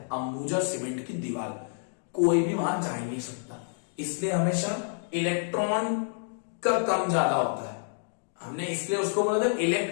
अंबुजा सीमेंट की दीवार, कोई भी वहां जा ही नहीं सकता, इसलिए हमेशा इलेक्ट्रॉन का कम ज्यादा होता है। हमने इसलिए उसको बोला था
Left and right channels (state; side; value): silent; right; digital silence